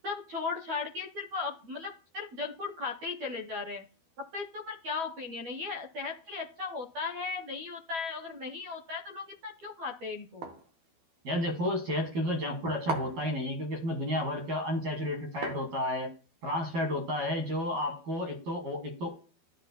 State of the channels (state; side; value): late; left; 12 ms